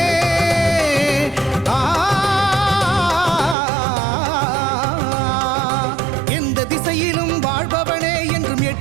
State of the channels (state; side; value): drops out; left; at 3.6 s